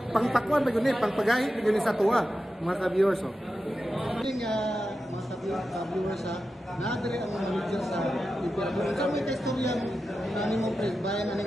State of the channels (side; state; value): both; normal; correlation 0.91